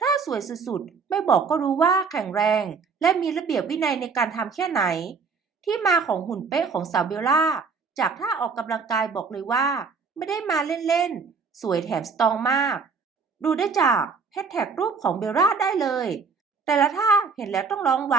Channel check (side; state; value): left; quieter; 5.2 dB